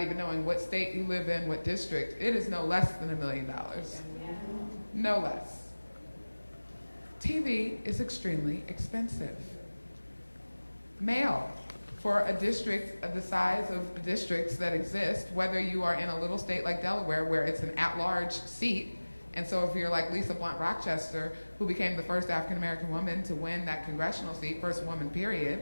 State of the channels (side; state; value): both; inverted; correlation -1.00